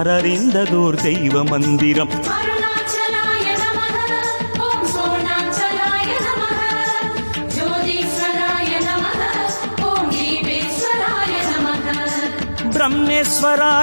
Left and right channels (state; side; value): inverted; both; correlation -1.00